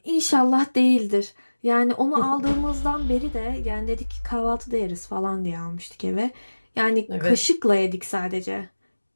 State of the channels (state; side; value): inverted; both; correlation -1.00